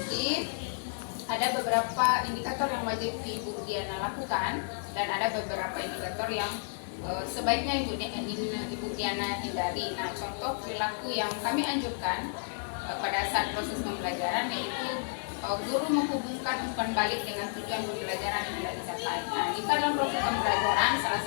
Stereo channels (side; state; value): right; silent; 57 dB below the other